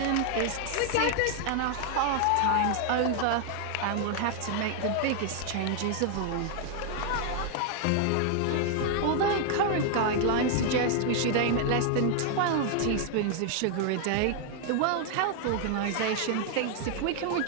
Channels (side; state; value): both; different; correlation 0.00